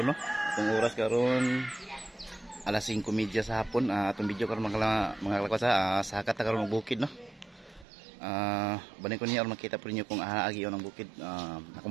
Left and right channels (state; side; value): drops out; left; at 7.9 s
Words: no. Itong oras karon alas 5:30 sa hapon. Atong video karon mga lakot sa hakat ta karon og bukid no. Banin ko niya aron makita po ninyo kung agi on ang bukid.